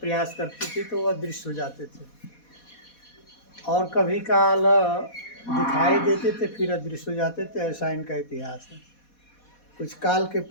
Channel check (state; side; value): late; right; 4.2 ms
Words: करती थी तो वह अदृश्य हो जाते थे, और कभी काल दिखाई देते थे फिर अदृश्य हो जाते थे। ऐसा इनका इतिहास है। कुछ काल के